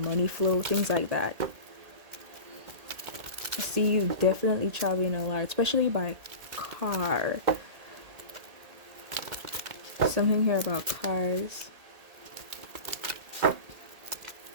flow, things like that. I see you definitely traveling a lot, especially by car. Something here about cars.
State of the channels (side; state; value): left; late; 1.8 ms